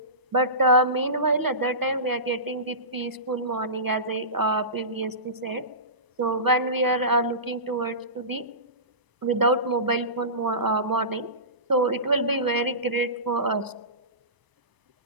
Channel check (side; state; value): left; late; 1.0 ms